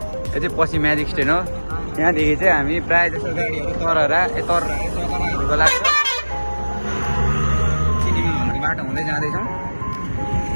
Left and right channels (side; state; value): both; inverted; correlation -1.00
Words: चाहिँ पश्चिम म्याजिक स्ट्यान्ड हो यहाँदेखि चाहिँ हामी प्रायः जस्तो गाडीहरू तरहरूको लाग्छ सिनेमा हलको बाटो हुँदै जाँदैछौँ